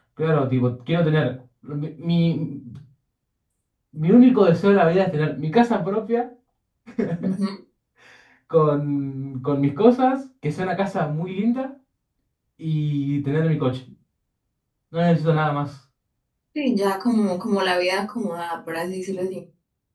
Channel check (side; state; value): both; identical; correlation 1.00